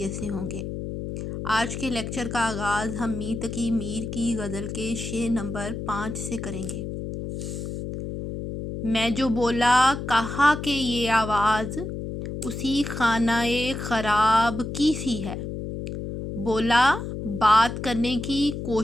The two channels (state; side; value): noise; left; hum, 6 dB below the sound